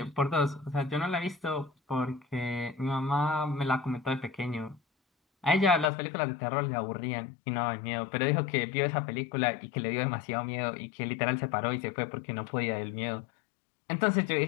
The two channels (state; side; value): drops out; right; at 5.9 s